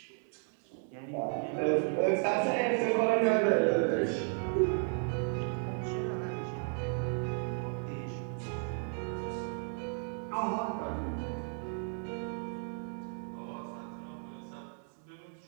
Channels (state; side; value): silent; left; 55 dB below the other